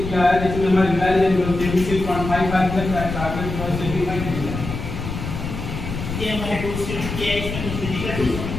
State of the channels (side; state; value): left; noise; rumble, 6 dB below the sound